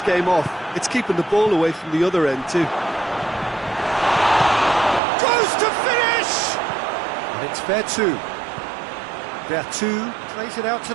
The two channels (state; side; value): drops out; left; at 5.0 s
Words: game off. It's keeping the ball away from the other end too. Goes to finish! And it's Vertu. Vertu plays it out to